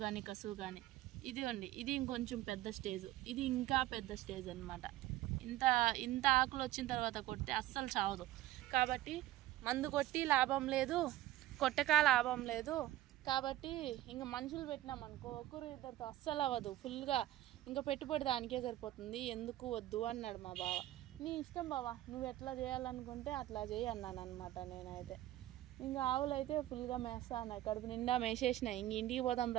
కానీ కసువు కానీ. ఇదిగోండి ఇది ఇంకొంచెం పెద్ద స్టేజ్, ఇది ఇంకా పెద్ద స్టేజ్ అనమాట. ఇంత ఆకులు వచ్చిన తర్వాత కొడితే అస్సలు చావదు. కాబట్టి మందు కొట్టి లాభం లేదు, కొట్టక లాభం లేదు. కాబట్టి ఇంకా మనుషులు పెట్టినామనుకో ఒకరు ఇద్దరితో అస్సలు అవ్వదు, ఫుల్గా ఇంకా పెట్టుబడి దానికే సరిపోతుంది. ఎందుకు వద్దు అన్నాడు మా బావ. నీ ఇష్టం బావా, నువ్వు ఎట్లా చేయాలనుకుంటే అట్లా చేయి అన్నాను అనమాట. నేనైతే ఇంకా ఆవులు అయితే ఫుల్గా మేస్తా అన్నాయి, కడుపు నిండా మేసేసినాయి. ఇంక ఇంటికి పోదాం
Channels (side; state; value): left; quieter; 15.2 dB